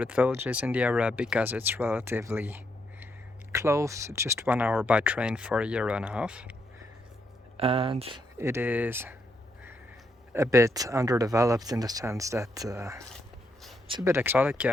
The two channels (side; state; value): both; normal; correlation 0.78